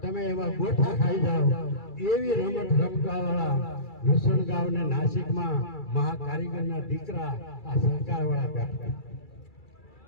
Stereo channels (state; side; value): late; right; 2.3 ms